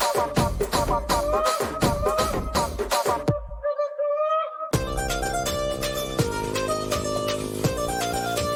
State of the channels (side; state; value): both; identical; correlation 1.00